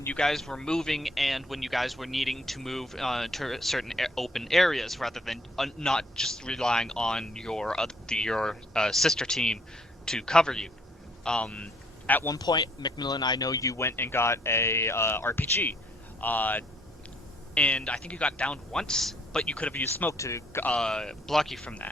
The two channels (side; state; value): both; normal; correlation 0.64